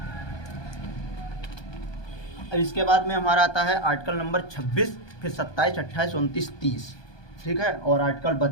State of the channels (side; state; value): right; late; 1.2 ms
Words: अब इसके बाद में हमारा आता है आर्टिकल नंबर 26, फिर 27, 28, 29, 30, ठीक है, और आर्टिकल